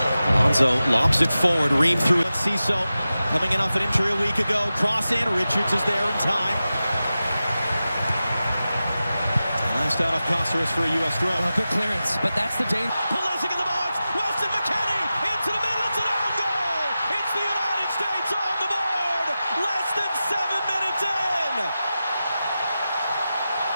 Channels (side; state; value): both; inverted; correlation -0.94